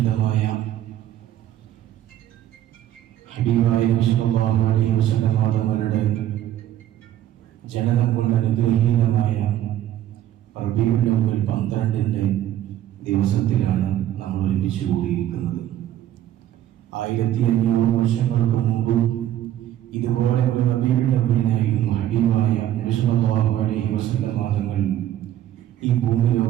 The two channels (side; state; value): left; quieter; 12.3 dB